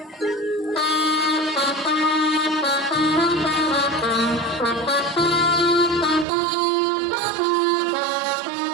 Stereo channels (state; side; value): drops out; left; at 6.2 s